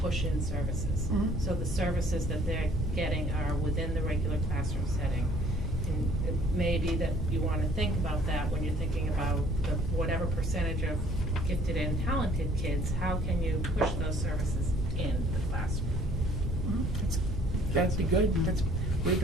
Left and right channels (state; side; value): normal; both; correlation 0.57